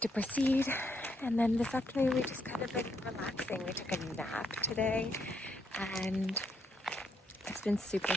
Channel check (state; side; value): normal; both; correlation 0.75